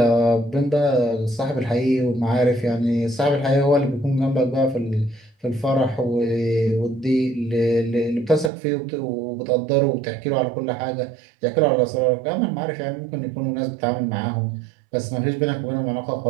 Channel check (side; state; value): left; drops out; at 8.5 s